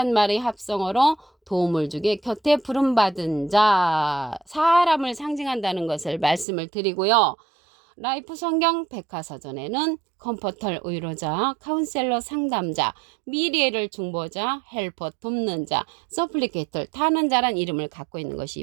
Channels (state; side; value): drops out; left; at 6.5 s